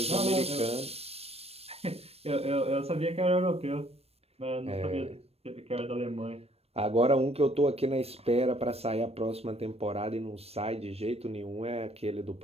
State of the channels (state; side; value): late; left; 0.29 ms